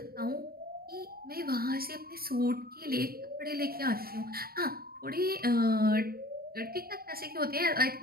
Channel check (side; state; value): left; late; 0.44 ms